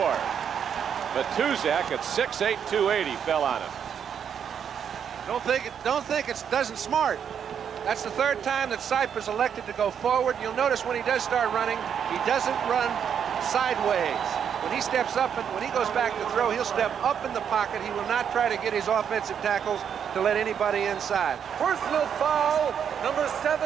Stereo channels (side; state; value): left; quieter; 8.0 dB